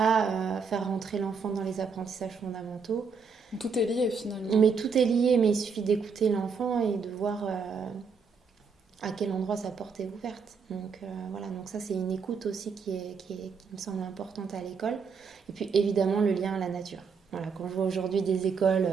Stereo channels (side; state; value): left; quieter; 5.4 dB